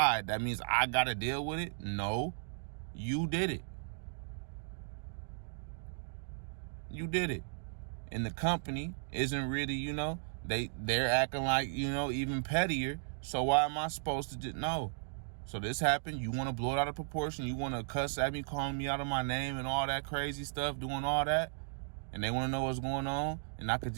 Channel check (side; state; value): left; silent; digital silence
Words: that means I got to deal with it? No, you did it. You did it. And the company isn't really, they're acting like, even pettier. So why am I supposed to just, no. So this happened. You want to blow it out of proportion. You want to cuss at me, calling me out of my name and all that crazy stuff, doing all that. And they want to know what's going on. And I could